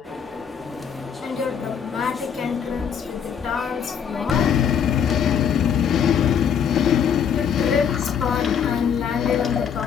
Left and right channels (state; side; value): quieter; right; 7.6 dB